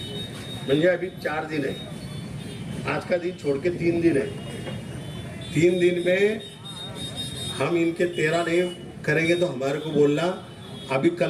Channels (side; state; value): both; identical; correlation 1.00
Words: म्हणजे अभी 4 दिन है, आज का दिन छोड़ के 3 दिन है। 3 दिन में हम इनके 13 नहीं करेंगे तो हमारे को बोलना। अभी